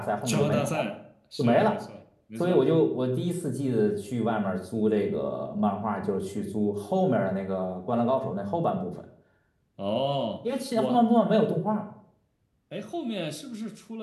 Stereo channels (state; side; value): identical; both; correlation 1.00